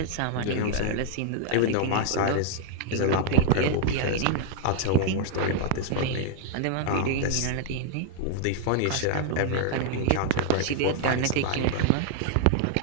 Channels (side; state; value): both; different; correlation -0.01